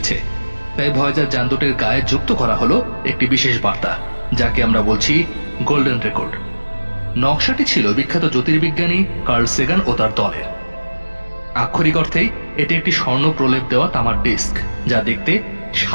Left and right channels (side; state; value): both; inverted; correlation -1.00